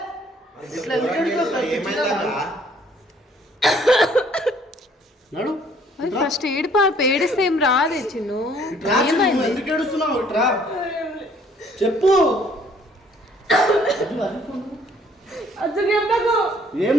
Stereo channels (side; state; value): both; normal; correlation 0.60